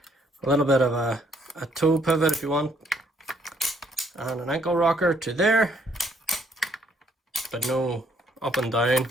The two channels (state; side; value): normal; both; correlation 0.67